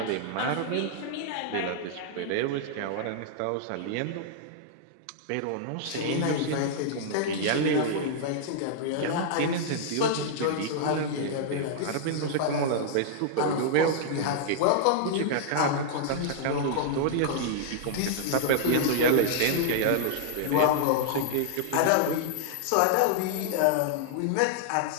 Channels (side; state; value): both; different; correlation -0.01